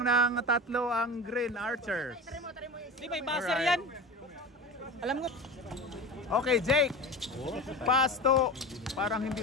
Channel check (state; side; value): normal; both; correlation 0.29